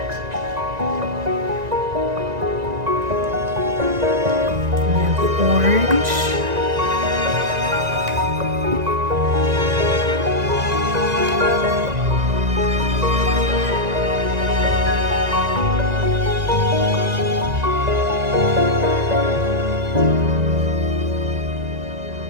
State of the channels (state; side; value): late; left; 1.9 ms